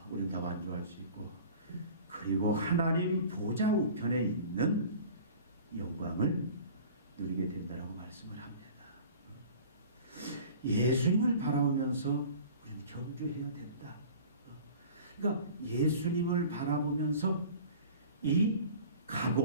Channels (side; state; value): both; inverted; correlation -0.43